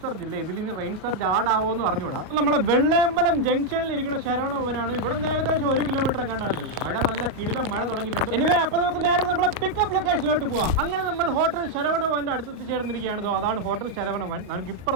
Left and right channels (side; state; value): left; late; 37 ms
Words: സർജ് ഇല്ല. ഇതിൽ ഇനി റെയിൻ സർജ് ആഡാവോ എന്ന് അറിഞ്ഞൂടാ. നമ്മളെ വെള്ളയമ്പലം ജംഗ്ഷനിൽ ഇരിക്കുന്ന ശരവണ ഭവനാണ്. ഇവിടെ നിന്ന് ഏകദേശം 1 കിലോമീറ്റർ കണ്ടാണ്ട് മഴ നല്ല കിടിലം മഴ തുടങ്ങിയിട്ടുണ്ട്. എനിവേ അപ്പൊ നമുക്ക് നേരെ നമ്മളെ പിക്കപ്പ് ലൊക്കേഷനിലോട്ട് പോവാം. അങ്ങനെ നമ്മൾ ഹോട്ടൽ ശരവണ ഭവന്റെ അടുത്ത് ചേർന്നിരിക്കുകയാണ്. അതാണ് ഹോട്ടൽ ശരവണ ഭവൻ. നമുക്ക്